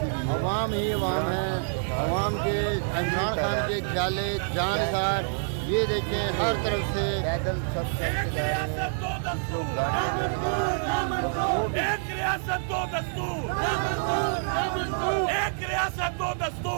अवाम ही अवाम है। अवाम के इमरान खान के ख्याले जानकार, ये देखें हर तरफ से पैदल सब चलते जा रहे हैं। एक रियासत दो दस्तूर, एक रियासत दो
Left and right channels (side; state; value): left; silent; 60 dB below the other